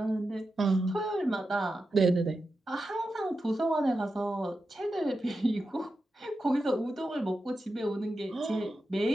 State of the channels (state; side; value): normal; both; correlation 0.90